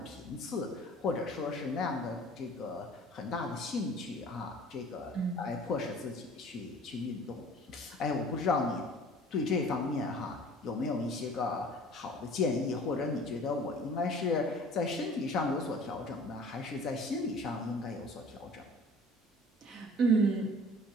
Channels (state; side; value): normal; both; correlation 0.47